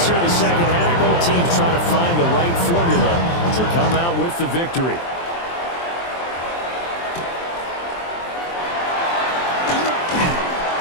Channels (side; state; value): right; late; 23 ms